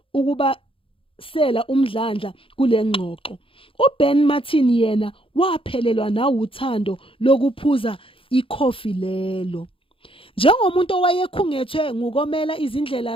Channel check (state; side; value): late; right; 0.26 ms